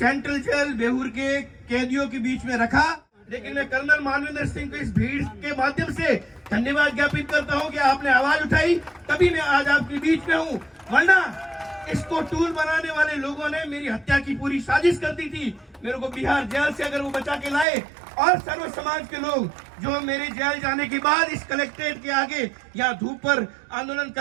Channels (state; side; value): drops out; left; at 17.7 s